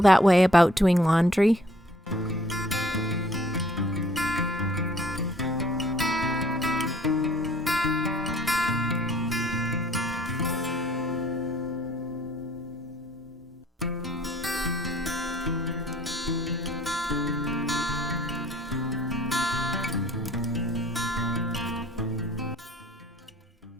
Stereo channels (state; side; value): normal; both; correlation 0.59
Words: that way about doing laundry?